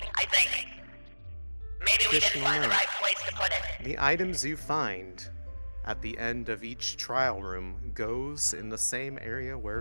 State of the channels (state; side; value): inverted; both; correlation -1.00